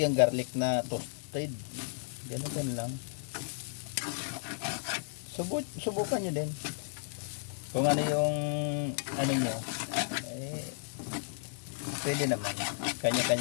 garlic na toasted. Ganun lang. Subukan nyo din. Kung ano yung ano nyo, eh, pwede naman.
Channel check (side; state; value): right; silent; digital silence